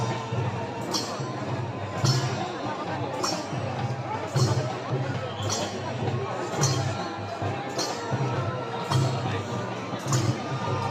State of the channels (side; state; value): both; identical; correlation 1.00